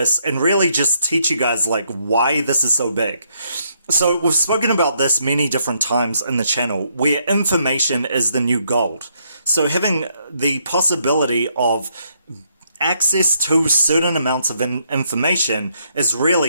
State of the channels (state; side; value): inverted; both; correlation -0.73